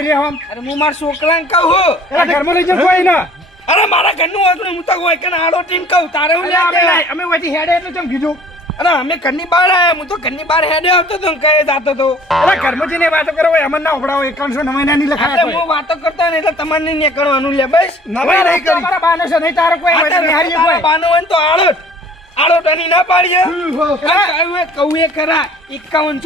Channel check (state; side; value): normal; both; correlation 0.52